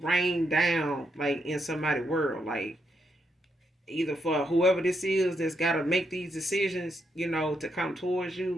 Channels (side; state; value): both; normal; correlation 0.79